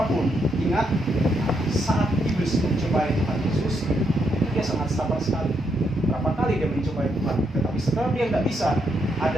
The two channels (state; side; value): normal; both; correlation 0.78